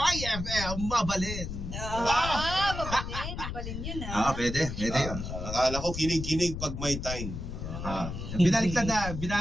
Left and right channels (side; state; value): left; noise; rumble, 6 dB below the sound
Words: mabalin. Mabalin yun Pwede yun. Akala ko kinig-kinig pag may time. Binaligtad na,